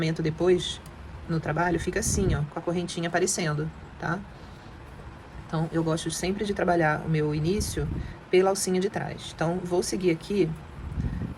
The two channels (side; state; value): both; identical; correlation 1.00